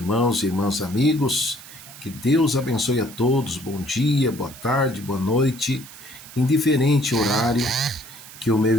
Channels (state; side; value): noise; right; hiss, 17 dB below the sound